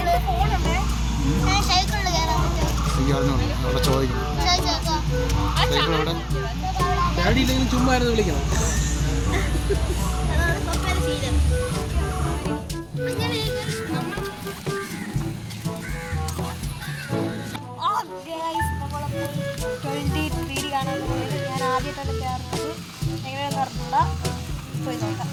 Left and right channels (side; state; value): both; identical; correlation 1.00